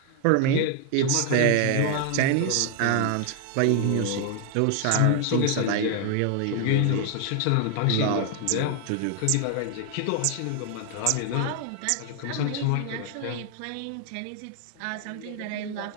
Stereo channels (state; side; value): different; both; correlation 0.00